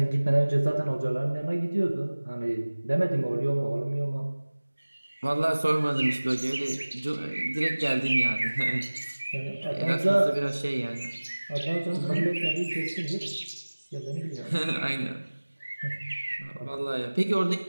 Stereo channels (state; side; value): inverted; both; correlation -1.00